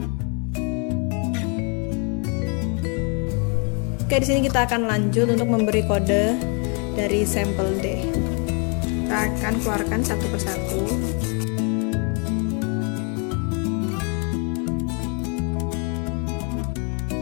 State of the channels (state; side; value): quieter; right; 36.1 dB